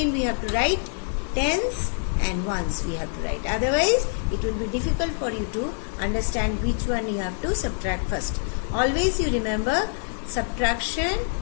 we have to write tens and ones we have to write. Otherwise it will be difficult for you to understand which one you have to subtract first. Always you remember, subtraction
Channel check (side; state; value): right; silent; digital silence